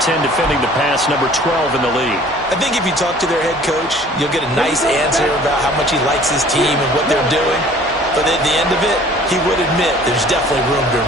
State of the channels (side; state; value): both; normal; correlation 0.51